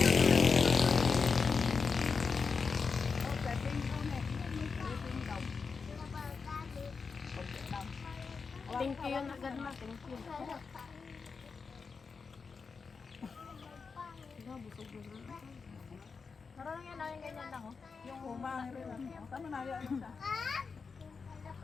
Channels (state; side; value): quieter; right; 5.1 dB